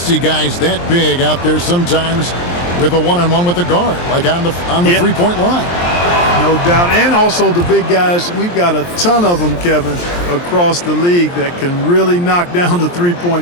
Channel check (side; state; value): right; late; 23 ms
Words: guys that big out there sometimes with a one-on-one with the guard, like on the Yeah. three-point line. No doubt. And also the big guys, we've got a ton of them, Kevin, across the league that can really knock down the